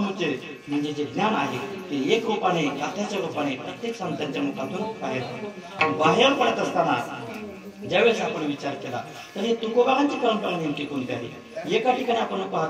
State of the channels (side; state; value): both; identical; correlation 1.00